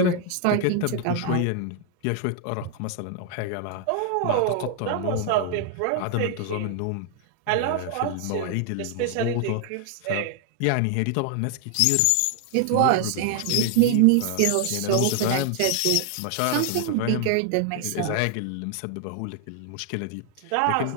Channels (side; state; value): both; different; correlation 0.00